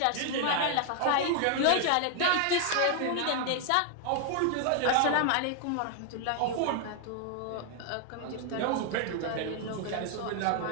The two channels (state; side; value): different; both; correlation 0.00